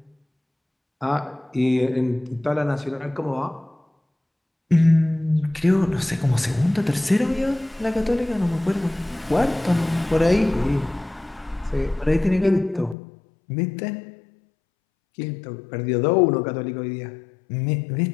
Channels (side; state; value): right; drops out; at 13.0 s